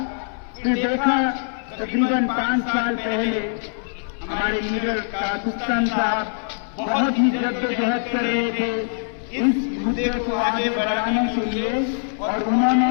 फिर देखा तकरीबन 5 साल पहले हमारे लीडर कासुस्तान साहब बहुत ही जद्दोजहद कर रहे थे इस मुद्दे को आगे बढ़ाने के लिए, और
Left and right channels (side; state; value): right; silent; 64 dB below the other